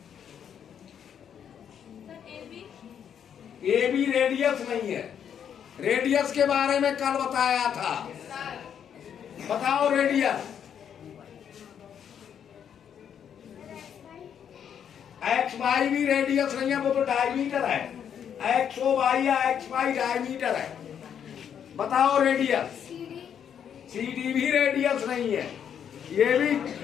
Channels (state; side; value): quieter; right; 8.5 dB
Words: ए बी रेडियस नहीं है। रेडियस के बारे में कल बताया था। बताओ रेडियस। एक्स वाई भी रेडियस नहीं है, वो तो डायमीटर है। एक्स ओ वाई या एक्स वाई डायमीटर है। बताओ रेडियस। सी डी भी रेडियस नहीं है, ये भी